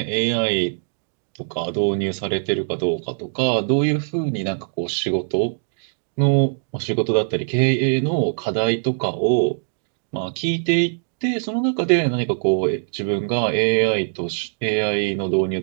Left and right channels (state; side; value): silent; left; digital silence